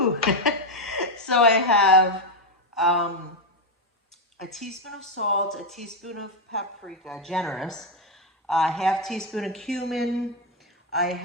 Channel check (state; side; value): normal; both; correlation 0.05